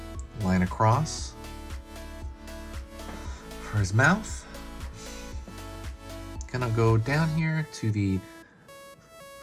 line across for his mouth. Gonna go down here to the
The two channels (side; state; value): both; identical; correlation 1.00